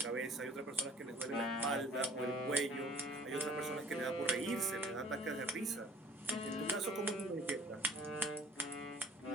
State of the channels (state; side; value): normal; both; correlation 0.53